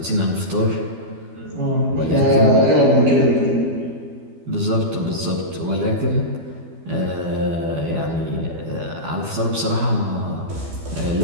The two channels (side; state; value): left; late; 12 ms